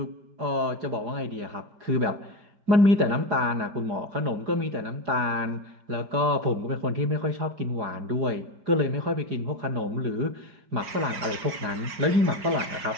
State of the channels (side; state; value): left; late; 5.0 ms